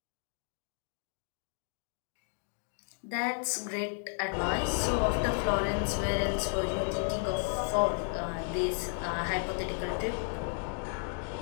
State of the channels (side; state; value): right; silent; 56 dB below the other